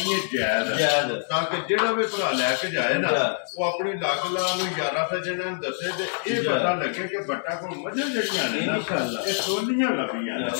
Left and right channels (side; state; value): right; silent; 62 dB below the other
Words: ਹੈ ਜਾਇਜ਼ ਤਾਂ ਕਿ ਜਿਹੜਾ ਵੀ ਭਰਾ ਲੈ ਕੇ ਜਾਏ ਨਾ ਉਹ ਆਪਣੀ ਲੱਗ ਲਾ ਨੂੰ ਯਾਰਾਂ ਸੱਜਣਾਂ ਨੂੰ ਦੱਸੇ ਤੇ ਇਹ ਪਤਾ ਲੱਗੇ ਕਿ ਬੱਟਾ ਕੋਲ ਮੱਝਾਂ ਜਿਹੜੀਆਂ ਨੇ ਇਨਸ਼ਾਅੱਲਾ ਇਹ ਸੋਹਣੀਆਂ ਲੱਭੀਆਂ ਨੇ